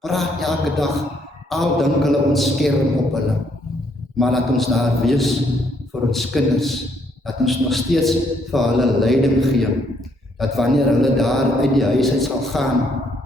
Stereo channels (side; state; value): both; normal; correlation 0.70